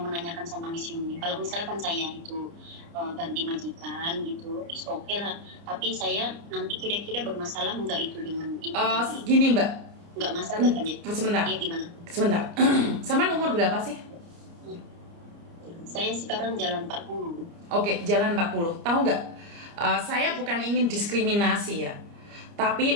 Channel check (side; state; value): left; late; 29 ms